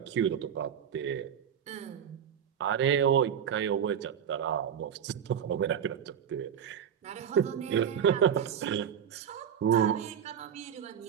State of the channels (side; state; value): left; quieter; 8.5 dB